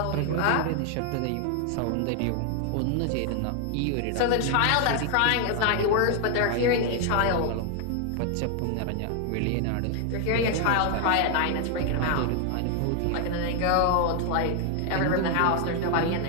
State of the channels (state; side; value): different; both; correlation 0.00